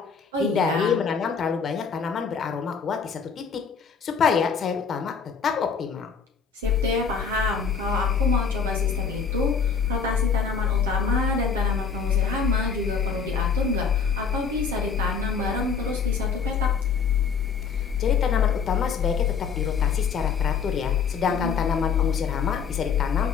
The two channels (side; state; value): right; quieter; 6.0 dB